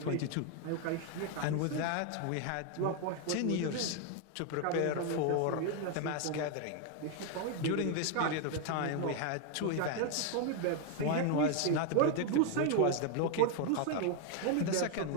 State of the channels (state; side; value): different; both; correlation 0.01